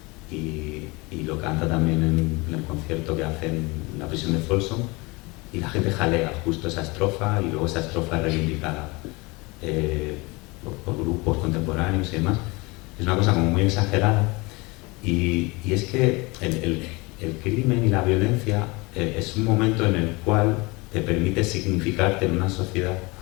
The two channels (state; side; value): quieter; right; 25.4 dB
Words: Y lo canta también en el concierto que hacen en la prisión de Folsom, y la gente jalea justo esa estrofa, y luego esa estrofa es reivindicada por grupos contemporáneos y demás. Es una cosa como muy exagerada, y es que el crimen y la violencia es un momento en el cual te permite significarte en una sociedad